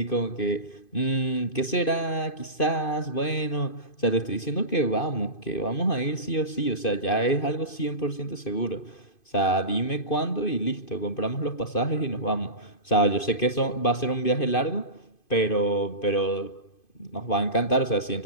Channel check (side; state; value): right; late; 2.5 ms